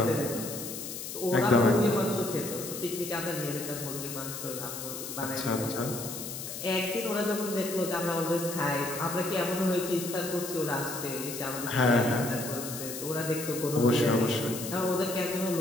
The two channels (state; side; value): noise; left; hiss, 8 dB below the sound